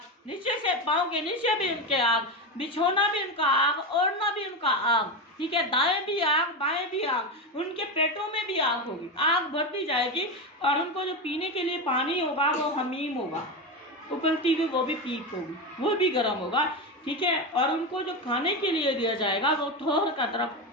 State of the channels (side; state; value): both; normal; correlation 0.16